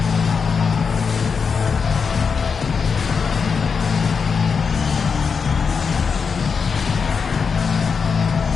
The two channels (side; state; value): right; quieter; 5.7 dB